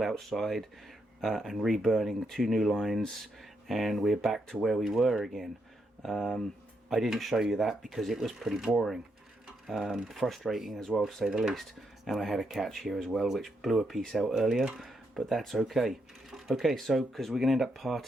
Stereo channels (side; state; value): both; normal; correlation 0.80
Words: outside and reburning 2 new lines, and we're back to where we were again. I didn't show you that because it was pretty boring, frustrating as well to say the least, and I had a catch here as well which blew a piece out earlier, but that's okay. Okay, so because we're going to end up